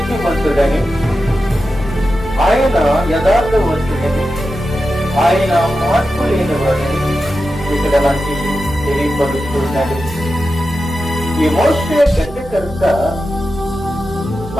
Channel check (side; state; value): right; noise; hum, 18 dB below the sound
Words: ఆయన యథార్థవంతుడని, ఆయన మార్పు లేనివాడని ఇక్కడ మనకి తెలియపరుస్తున్నాడు. ఈ మోషే గడ్డకర్త